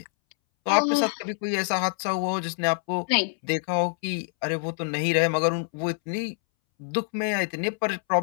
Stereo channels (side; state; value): right; silent; 61 dB below the other